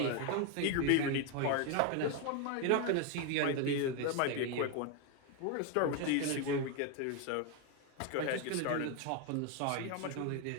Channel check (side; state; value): both; different; correlation 0.01